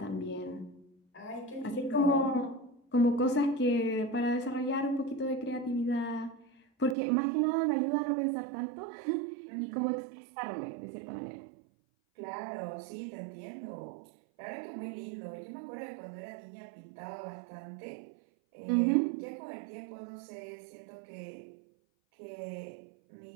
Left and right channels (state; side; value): drops out; left; at 7.0 s